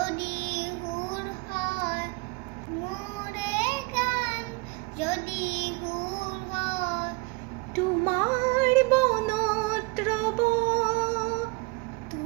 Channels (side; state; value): left; quieter; 27.6 dB